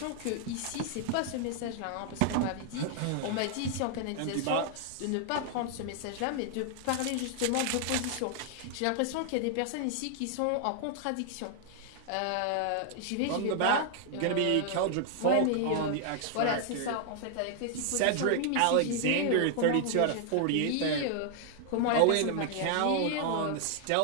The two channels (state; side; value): different; both; correlation 0.00